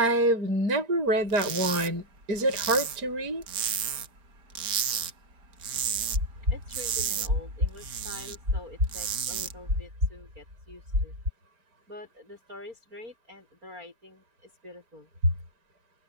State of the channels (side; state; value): left; late; 4.4 ms